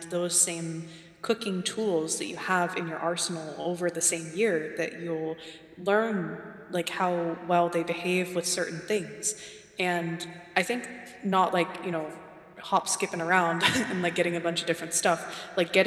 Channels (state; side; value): identical; both; correlation 1.00